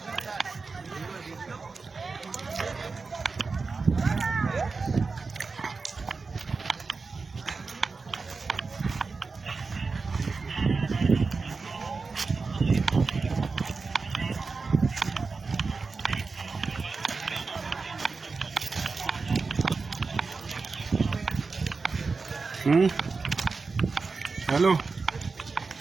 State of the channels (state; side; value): quieter; left; 4.3 dB